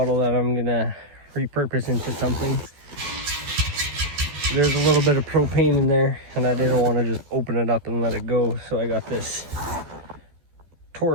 that I'm gonna repurpose into something. There's a little bit of propane in there and I didn't want to just open it up and let it go, so I got this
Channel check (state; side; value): late; left; 14 ms